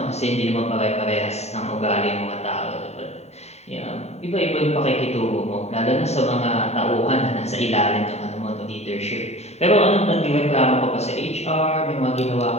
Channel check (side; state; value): right; late; 0.32 ms